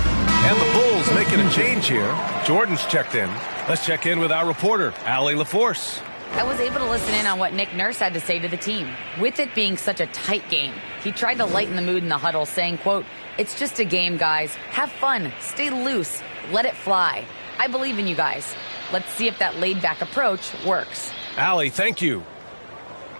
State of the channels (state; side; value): inverted; both; correlation -1.00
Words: And the Bulls making a change here. Jordan's checked in. Let's check in with our reporter, Allie LaForce. I was able to listen in on what Nick Nurse had to say to the team. With it being such a tight game, he tried to lighten the mood in the huddle, saying, quote, "It's just a game, guys. Have fun. Stay loose. Let it fly. I believe in you guys. Let's see if that laid-back approach works." Allie, thank you.